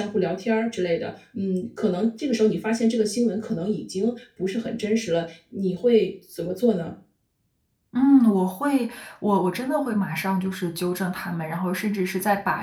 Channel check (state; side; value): identical; both; correlation 1.00